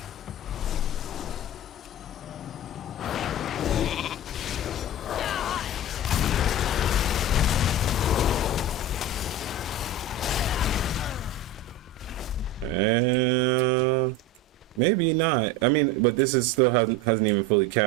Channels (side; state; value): both; normal; correlation 0.27